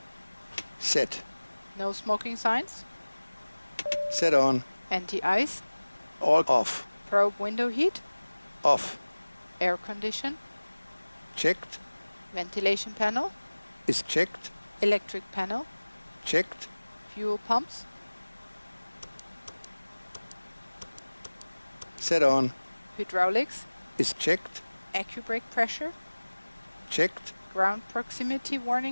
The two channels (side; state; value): both; inverted; correlation -1.00